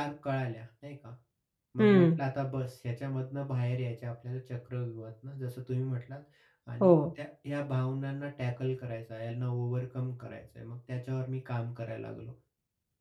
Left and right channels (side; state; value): both; identical; correlation 1.00